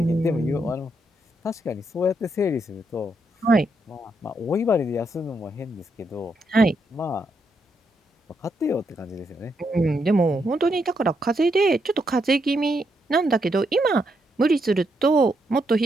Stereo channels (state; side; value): normal; both; correlation 0.79